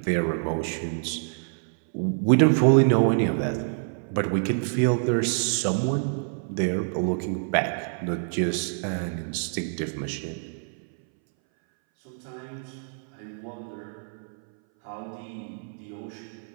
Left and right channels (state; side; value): silent; left; 60 dB below the other